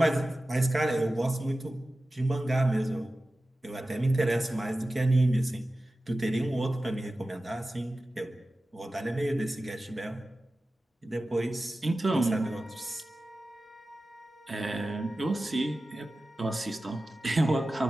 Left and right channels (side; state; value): both; normal; correlation 0.95